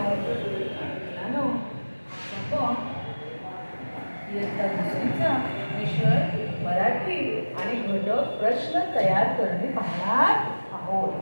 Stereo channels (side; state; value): both; inverted; correlation -1.00